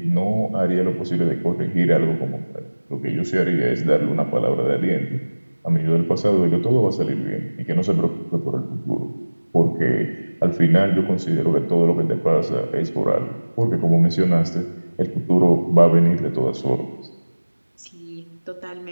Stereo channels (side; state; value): both; inverted; correlation -1.00